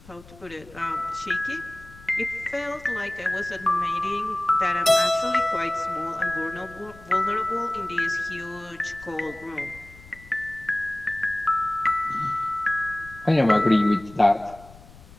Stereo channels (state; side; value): noise; left; rumble, 21 dB below the sound